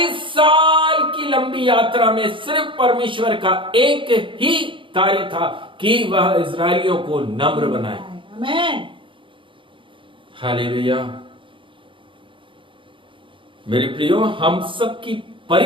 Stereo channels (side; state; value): left; late; 0.25 ms